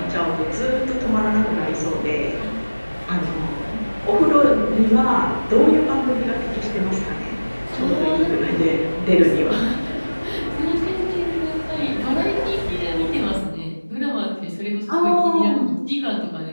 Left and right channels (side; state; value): both; inverted; correlation -1.00